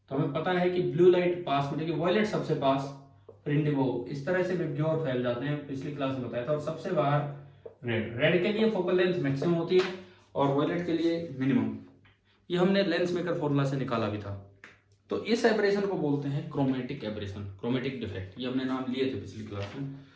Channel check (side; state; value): both; identical; correlation 1.00